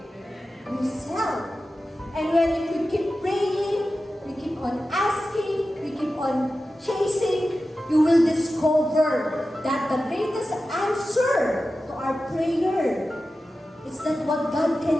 Himself. And when if we keep praying, we keep on asking, we keep on chasing, you will discover that the greatest answer to our prayer is not what God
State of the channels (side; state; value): both; normal; correlation 0.93